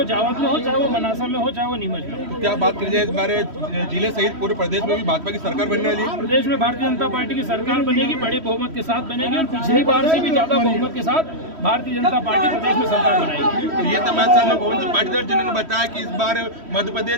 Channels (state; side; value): late; left; 3.1 ms